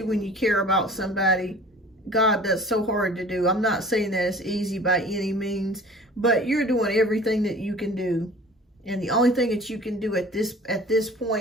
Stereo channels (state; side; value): normal; both; correlation 0.45